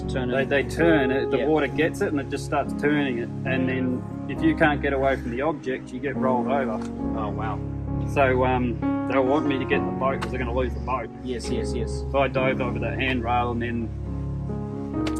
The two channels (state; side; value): identical; both; correlation 1.00